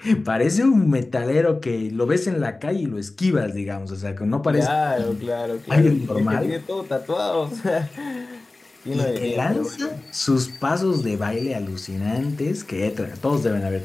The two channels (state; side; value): quieter; right; 3.1 dB